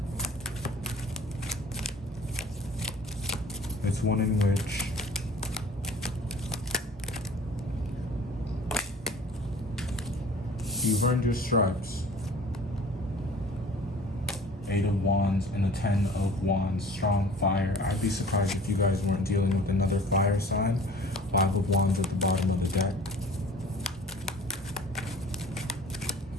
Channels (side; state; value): both; normal; correlation 0.46